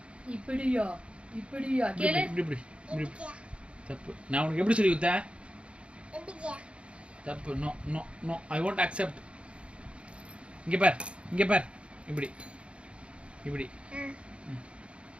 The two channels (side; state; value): left; late; 0.059 ms